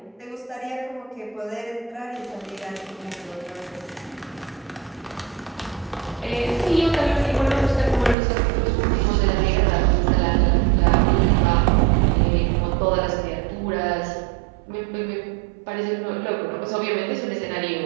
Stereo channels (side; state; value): left; drops out; at 8.2 s